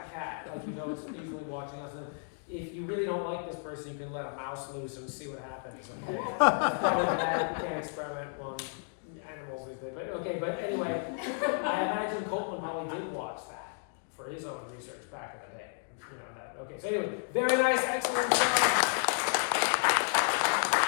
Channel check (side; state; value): right; silent; 56 dB below the other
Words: cat. Like you know, it's usually watching us. And if you really don't like this person, you can let a mouse loose and see what happens. Okay, it's probably bad. You can't experiment on animals with it. But okay, but anyway, I imagine Copland probably did watch that for his own research back in the day. You know that. Okay, so anyway, very nice, excellent job.